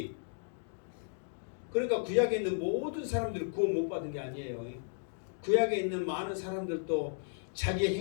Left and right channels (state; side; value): silent; right; digital silence